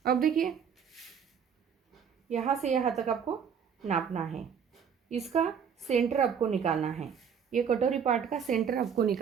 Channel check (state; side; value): quieter; left; 7.3 dB